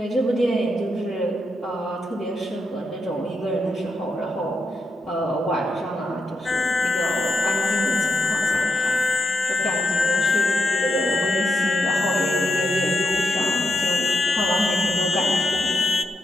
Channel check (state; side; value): normal; both; correlation 0.84